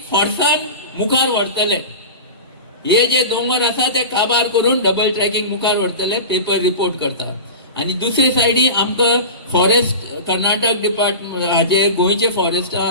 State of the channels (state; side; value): inverted; both; correlation -0.30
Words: फोर्सान मुखार व्हरतले. हे जे दोंगर आसा ते काबार करून डबल ट्रॅकिंग मुखार व्हरतले, पेपर रिपोर्ट करतात. आनी दुसरे सायडी आमकां फॉरेस्ट कर्नाटक डिपार्टमेंट हाजे गोंयचे फॉरेस्टा